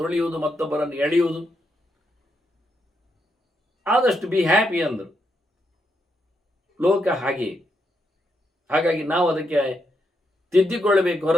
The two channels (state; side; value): normal; both; correlation 0.80